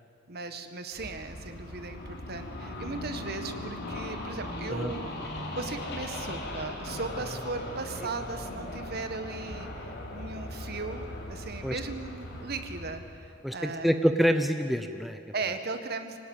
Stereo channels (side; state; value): both; normal; correlation 0.56